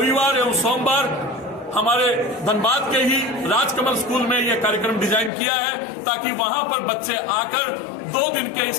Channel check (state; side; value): drops out; right; at 5.3 s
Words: एवं सोमवार हमारे धनबाद के ही राजकमल स्कूल में यह कार्यक्रम डिजाइन किया है, ताकि वहां पर बच्चे आकर 2 दिन के